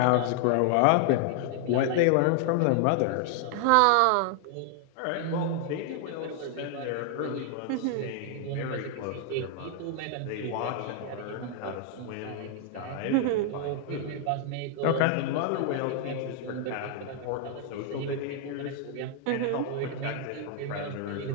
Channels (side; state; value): both; different; correlation 0.00